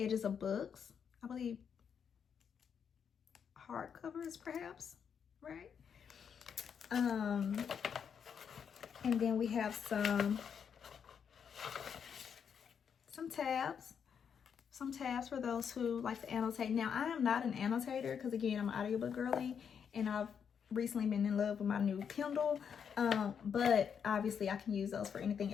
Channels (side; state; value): right; quieter; 7.3 dB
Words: of books. I believe hardcovers, perhaps, right? And then we have some tabs. Some tabs for those who like to annotate. Now, I am not an annotator because, again, I'm an audiobook girly, and I've recently been in love with my new Kindle. But obviously I can use those for anything